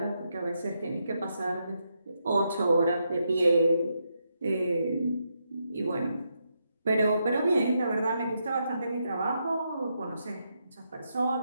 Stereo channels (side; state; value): both; inverted; correlation -0.82